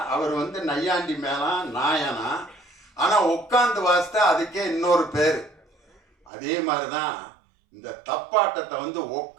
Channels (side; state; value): left; drops out; at 6.3 s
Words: அவர் வந்து நையாண்டி மேளம் நாயனா. ஆனால் உட்காந்து வாசித்தா அதுக்கே இன்னொரு பேர். அதே மாதிரி தான் இந்த தப்பாட்டத்தை வந்து